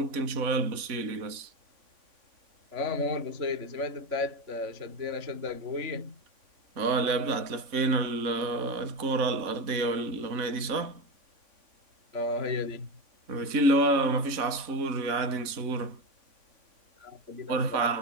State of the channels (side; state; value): left; late; 3.5 ms